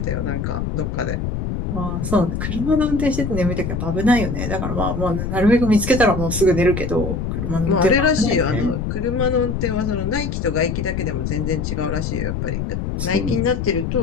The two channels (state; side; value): noise; left; rumble, 3 dB below the sound